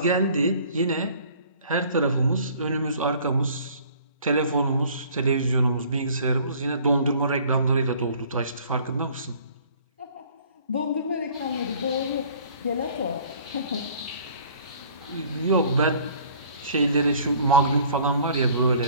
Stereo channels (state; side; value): inverted; both; correlation -0.53